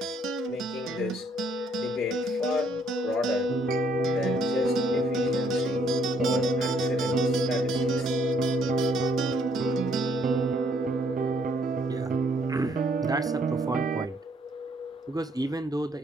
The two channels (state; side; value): normal; both; correlation 0.67